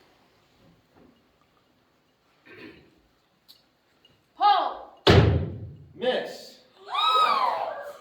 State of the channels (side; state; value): both; identical; correlation 1.00